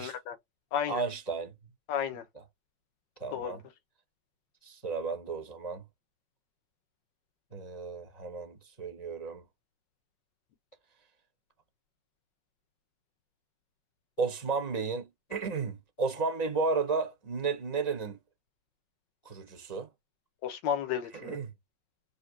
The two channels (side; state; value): right; late; 5.4 ms